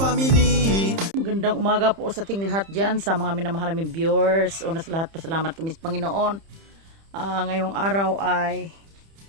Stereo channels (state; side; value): late; left; 30 ms